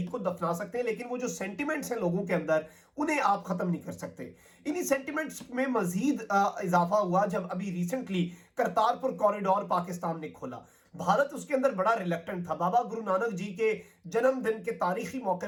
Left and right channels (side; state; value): both; identical; correlation 1.00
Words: को दफना सकते हैं लेकिन वो जो सेंटिमेंट्स हैं लोगों के अंदर उन्हें आप खत्म नहीं कर सकते। इन्हीं सेंटिमेंट्स में मजीद इजाफा हुआ जब अभी रिसेंटली करतारपुर कॉरिडोर पाकिस्तान ने खोला। भारत उसके अंदर बड़ा रिलेक्टेंट था। बाबा गुरु नानक जी के जन्मदिन के तारीखी मौके